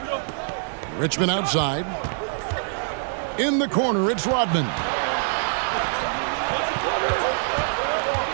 Richmond outside. In the corner, it's Rodman.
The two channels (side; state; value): left; silent; digital silence